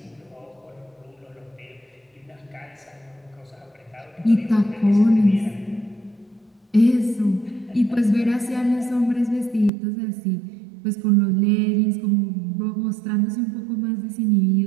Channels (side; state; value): left; drops out; at 9.7 s